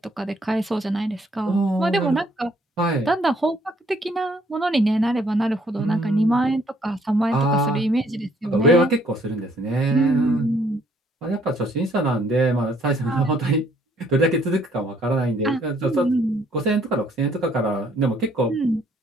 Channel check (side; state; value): both; normal; correlation 0.65